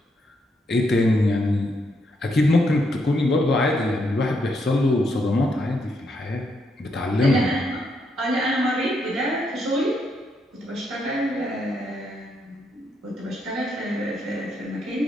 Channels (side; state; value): both; normal; correlation 0.77